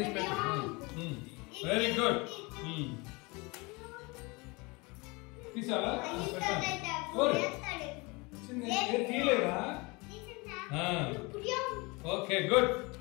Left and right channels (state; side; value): quieter; right; 26.6 dB